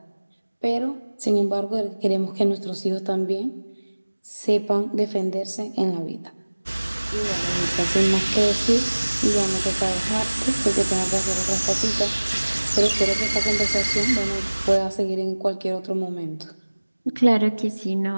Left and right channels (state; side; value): inverted; both; correlation -1.00